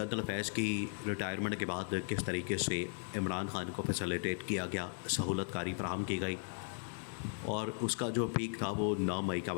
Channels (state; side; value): silent; right; digital silence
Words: فیض کی ریٹائرمنٹ کے بعد کس طریقے سے عمران خان کو فیسیلیٹیٹ کیا گیا، سہولت کاری فراہم کی گئی، اور اس کا جو پیک تھا وہ 9 مئی کا